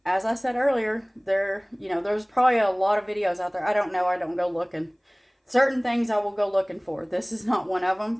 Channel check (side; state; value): both; identical; correlation 1.00